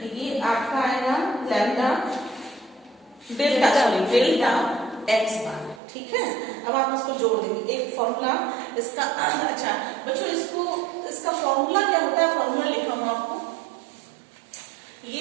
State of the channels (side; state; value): left; drops out; at 5.8 s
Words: ये आपका आएगा lambda delta, sorry delta x बार। ठीक है, अब आप इसको जोड़ देंगे, एक फॉर्मूला इसका। अच्छा बच्चों, इसका फॉर्मूला क्या होता है, फॉर्मूला लिखा हूं आपको,